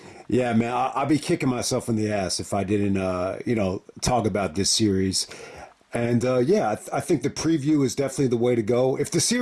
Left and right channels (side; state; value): both; identical; correlation 1.00